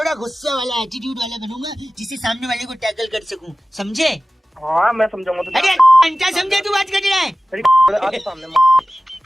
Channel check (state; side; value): normal; both; correlation 0.96